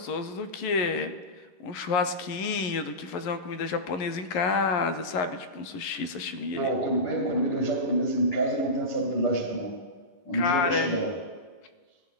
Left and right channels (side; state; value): right; late; 11 ms